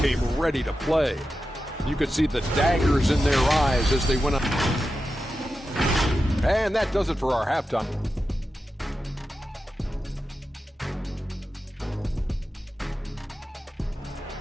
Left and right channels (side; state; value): both; normal; correlation 0.91